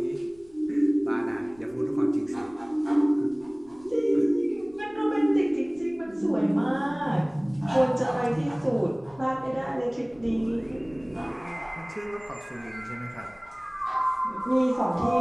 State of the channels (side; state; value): left; noise; rumble, 27 dB below the sound